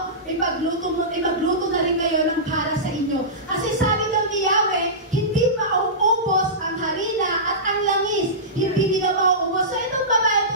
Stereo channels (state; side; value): normal; both; correlation -0.19